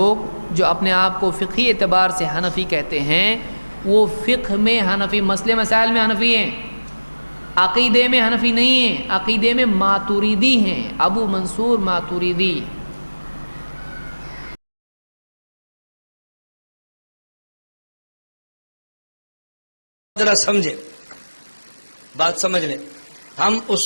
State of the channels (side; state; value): both; inverted; correlation -1.00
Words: جو اپنے آپ کو فقہی اعتبار سے حنفی کہتے ہیں، وہ فقہ میں حنفی، مسئلے مسائل میں حنفی ہیں، عقیدے میں حنفی نہیں ہیں، عقیدے میں ماتریدی ہیں، ابو منصور ماتریدی۔ ذرا سمجھے، بات سمجھ لیں، ہم